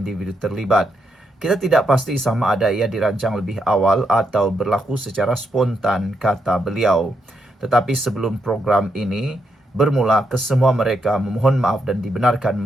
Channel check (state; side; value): normal; both; correlation 0.80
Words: terlibat. Kita tidak pasti sama ada ia dirancang lebih awal atau berlaku secara spontan, kata beliau. Tetapi sebelum program ini bermula, kesemua mereka memohon maaf dan dibenarkan